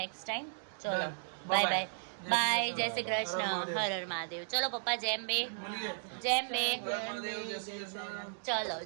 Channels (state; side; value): silent; left; digital silence